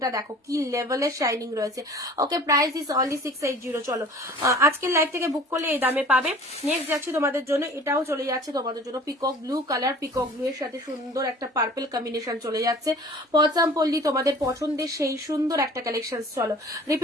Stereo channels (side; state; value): both; normal; correlation 0.46